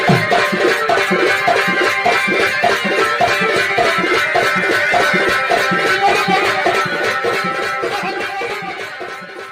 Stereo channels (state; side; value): identical; both; correlation 1.00